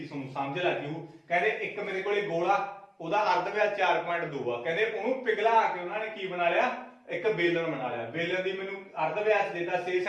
ਤੁਹਾਨੂੰ ਸਮਝ ਲੱਗੀ ਹੋ। ਕਹਿੰਦੇ ਇੱਕ ਮੇਰੇ ਕੋਲੇ ਗੋਲਾ, ਉਹਦਾ ਅਰਧ ਵਿਆਸ 4.2 ਆ, ਕਹਿੰਦੇ ਉਹਨੂੰ ਪਿਘਲਾ ਕੇ ਉਹਨਾਂ ਨੇ ਕੀ ਬਣਾ ਲਿਆ ਇੱਕ ਬੇਲਣ ਬਣਾ ਲਿਆ। ਬੇਲਣ ਦੀ ਮੈਨੂੰ ਅਰਧ ਵਿਆਸ ਦਿੱਤਾ 6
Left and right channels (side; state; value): both; identical; correlation 1.00